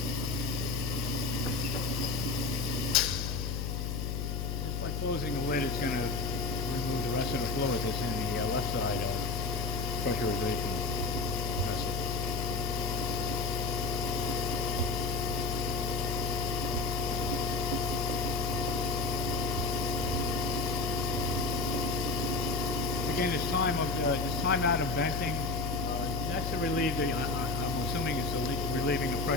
just by closing the lid. It's going to remove the rest of the fluid that's in the left side of pressurization vessel. Again, this time out of venting, that's to relieve the, I'm going to assuming it's relieving the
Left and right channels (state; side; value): noise; left; hum, 2 dB below the sound